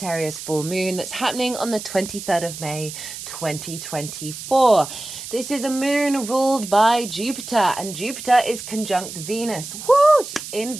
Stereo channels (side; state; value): right; noise; hiss, 10 dB below the sound